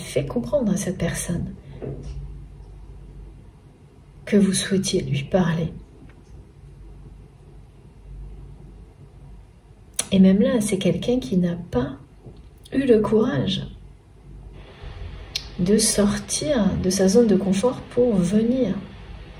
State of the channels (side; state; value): both; identical; correlation 1.00